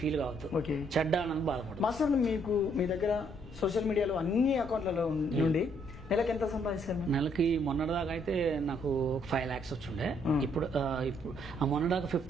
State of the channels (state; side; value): noise; left; rumble, 16 dB below the sound